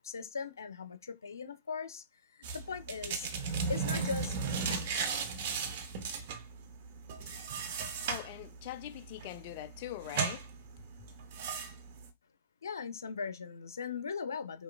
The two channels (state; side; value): inverted; both; correlation -0.41